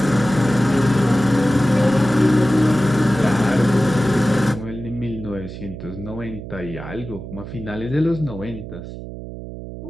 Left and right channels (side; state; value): right; noise; hum, 11 dB below the sound